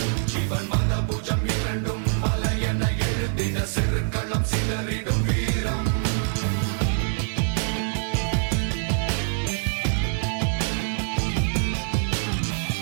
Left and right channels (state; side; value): silent; left; digital silence